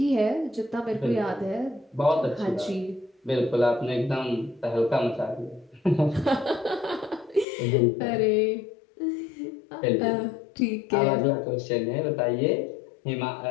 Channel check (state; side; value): drops out; right; at 7.5 s